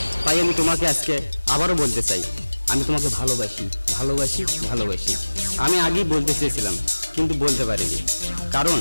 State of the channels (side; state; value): both; inverted; correlation -1.00